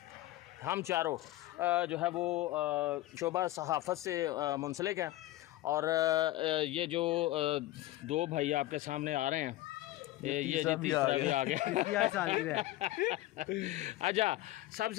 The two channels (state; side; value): quieter; right; 16.3 dB